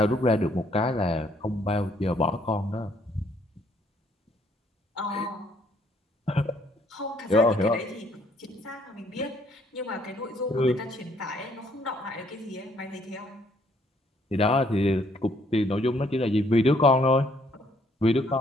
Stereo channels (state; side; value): normal; both; correlation 0.66